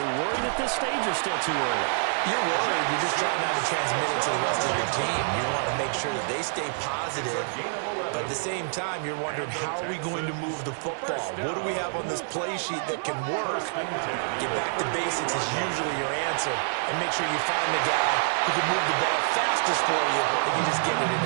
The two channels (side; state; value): left; silent; digital silence